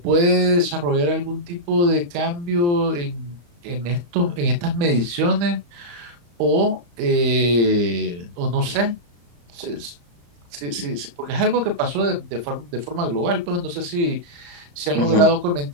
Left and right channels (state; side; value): late; left; 35 ms